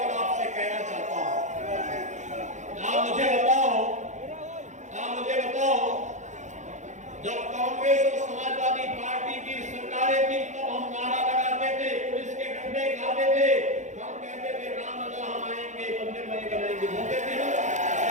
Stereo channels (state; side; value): late; left; 0.35 ms